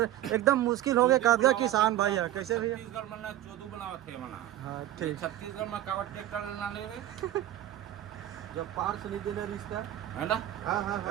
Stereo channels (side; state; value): left; quieter; 13.2 dB